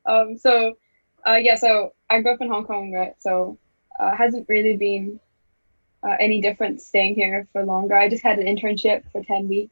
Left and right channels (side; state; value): both; inverted; correlation -1.00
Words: So I grew up in Hong Kong, right? So, hasn't really been any different staying here for longer. I just had an internship for 10